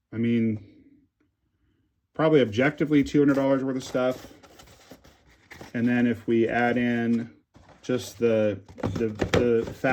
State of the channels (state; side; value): identical; both; correlation 1.00